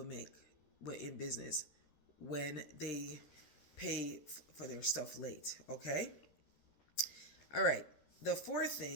make in business when they pay for their stuff late. Okay? All right. The fourth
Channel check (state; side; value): late; right; 13 ms